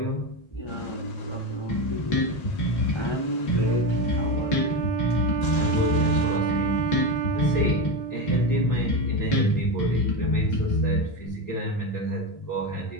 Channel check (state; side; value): late; right; 1.9 ms